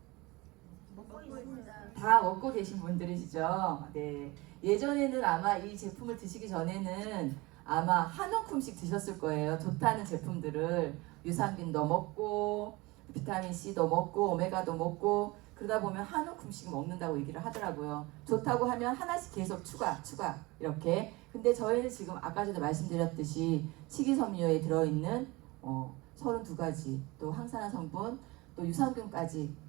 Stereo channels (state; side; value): quieter; left; 22.9 dB